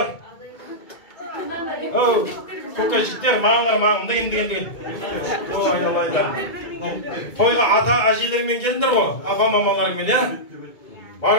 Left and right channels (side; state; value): right; late; 2.2 ms